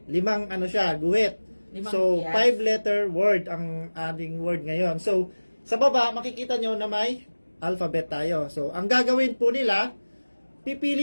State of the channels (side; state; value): both; inverted; correlation -1.00